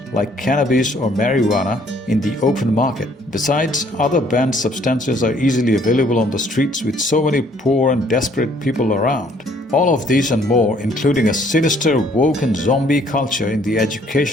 like cannabis or marijuana in the open market. Besides, other banned substances are easily available on the streets with so many poor and desperate people around. All of these and more, including a sinister, woke and zombie culture in the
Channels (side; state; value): both; normal; correlation 0.62